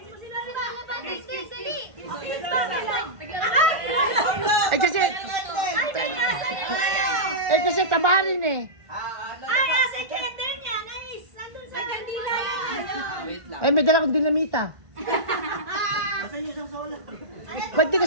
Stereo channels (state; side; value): late; left; 1.5 ms